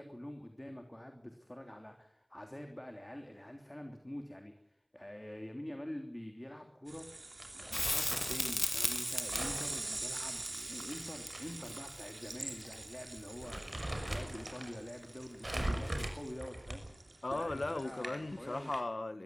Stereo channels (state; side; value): normal; both; correlation 0.98